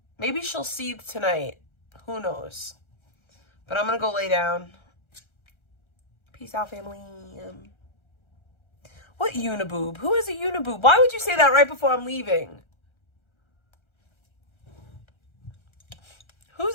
Maybe she'll seethe tonight. Who knows? But I'm going to go lay down. Peace out, family. What uniboob? Who is a uniboob? Why would you say that right before I'm leaving?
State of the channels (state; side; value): late; right; 1.3 ms